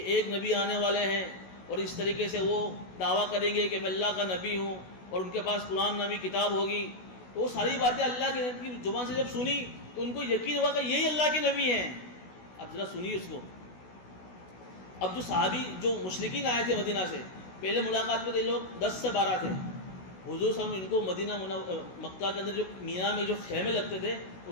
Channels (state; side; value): late; right; 16 ms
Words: ایک نبی آنے والے ہیں اور اس طریقے سے وہ دعویٰ کریں گے کہ میں اللہ کا نبی ہوں اور ان کے پاس قرآن نامی کتاب ہوگی۔ تو وہ ساری باتیں اللہ کے نبی کی زبان سے جب سنی تو ان کو یقین ہوا کہ یہی اللہ کے نبی ہیں۔ اب ذرا سنیے اس کو۔ اب جو صحابی جو مشرکین آئے تھے مدینہ سے، پہلے ملاقات میں تھے لوگ 10 سے 12 تھے، حضور صلی اللہ علیہ وسلم ان کو مکہ کے اندر جو مینا میں جو خیمے لگتے تھے